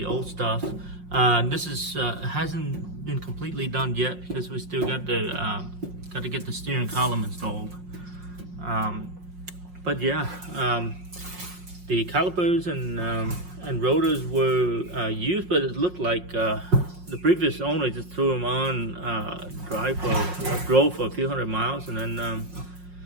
old stuff. This is hasn't been completely done yet because we still got to get the steering column installed. But yeah, the calipers and rotors were used, but it looked like the previous owner just threw them on, drove for a few hundred miles, and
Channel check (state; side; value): late; left; 5.6 ms